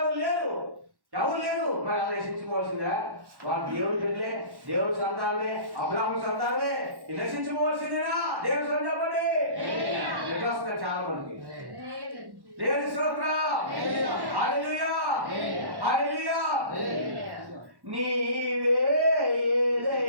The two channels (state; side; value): late; left; 1.1 ms